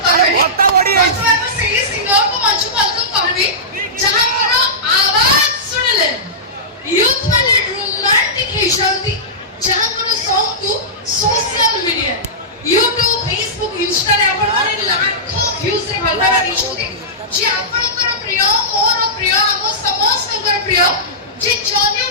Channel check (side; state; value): both; normal; correlation -0.16